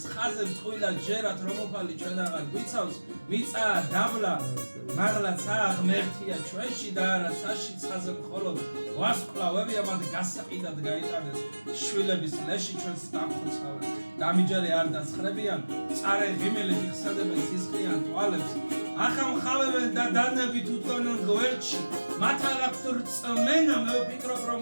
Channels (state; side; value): inverted; both; correlation -1.00